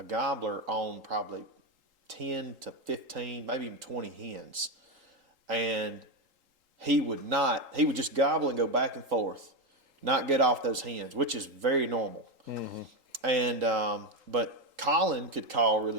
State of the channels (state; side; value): late; left; 3.8 ms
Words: gobbler on probably 10 to 15, maybe even 20 hens, and he would just gobble and go back and forth, not get off those hens, which is very normal. And but Colin could call